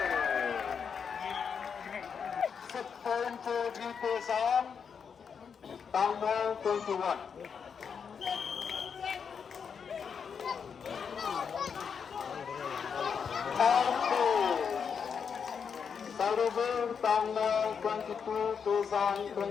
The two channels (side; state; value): right; quieter; 6.6 dB